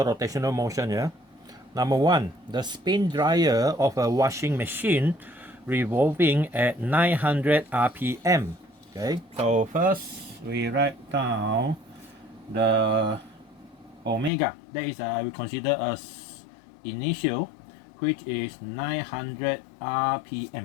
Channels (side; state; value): right; drops out; at 14.3 s